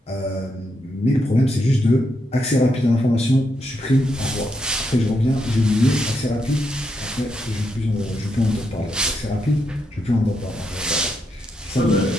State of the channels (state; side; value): normal; both; correlation 0.81